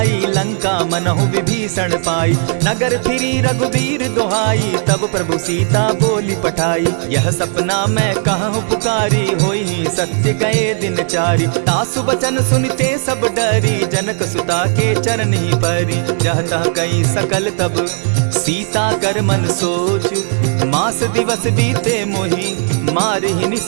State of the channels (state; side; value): silent; left; 58 dB below the other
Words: लंका मनहु विभीषण पाई। नगर फिरी रघुबीर दुहाई, तब प्रभु सीता बोली पठाई। यह सपना मैं कहूँ पुकारी, होई सत्य गए दिन चारी। तासु बचन सुनते सब डरी, जनक सुता के चरण ही परी। जहता कई सकल तब सीता कर मन सोच, मास दिवस बीते मोही, मारहि